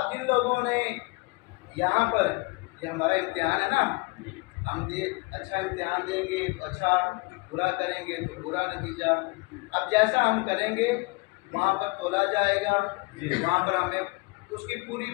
जिन लोगों ने यहाँ पर, ये हमारा इम्तिहान है ना, हम अच्छा इम्तिहान देंगे तो अच्छा, बुरा करेंगे तो बुरा नतीजा। अब जैसा हम करेंगे वहाँ पर तोला जाएगा, वहाँ पर हमें उसकी पूरी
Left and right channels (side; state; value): right; quieter; 27.1 dB